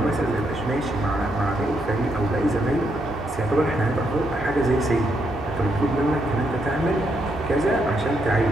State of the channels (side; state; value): both; normal; correlation 0.78